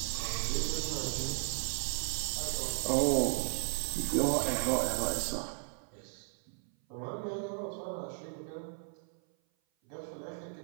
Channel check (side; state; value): left; silent; 54 dB below the other